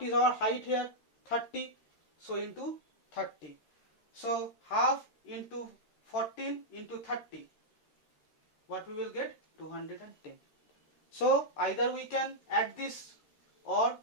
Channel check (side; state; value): right; late; 13 ms